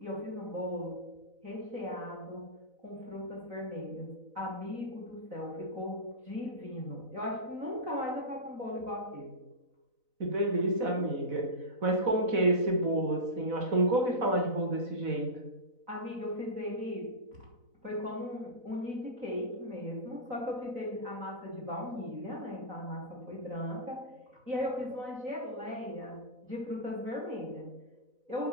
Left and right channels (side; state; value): left; late; 4.1 ms